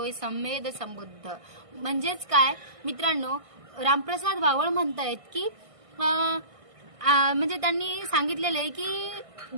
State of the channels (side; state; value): left; late; 1.6 ms